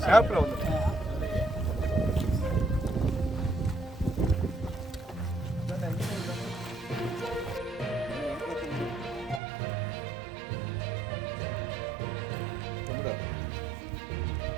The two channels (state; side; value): drops out; left; at 9.4 s